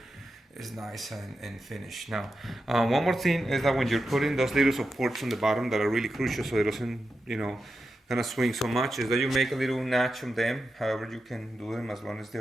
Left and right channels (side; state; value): both; normal; correlation 0.89